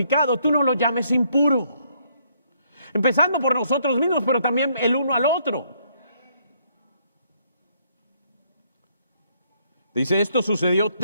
tú no lo llames impuro. Empezando por nosotros mismos, pero también el uno al otro. Dice, esto sucedió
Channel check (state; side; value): inverted; both; correlation -0.69